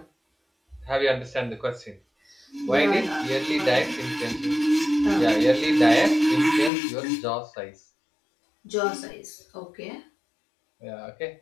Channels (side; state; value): right; drops out; at 6.7 s